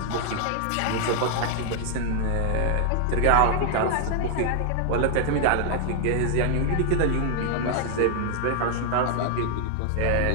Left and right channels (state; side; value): different; both; correlation 0.00